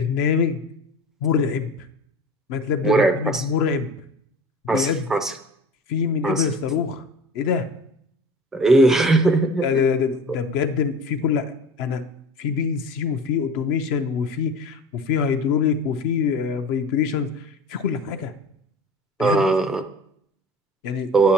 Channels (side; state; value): both; normal; correlation 0.38